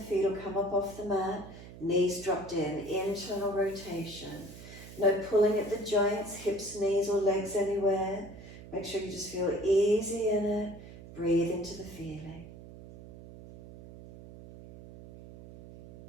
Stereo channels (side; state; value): right; noise; hum, 16 dB below the sound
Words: will come up off the mat, knees dropped in, internal rotation. No pulling at the joints, hips, knees, or legs anywhere. Make sure you just feel easy in it. Breathe into the feeling.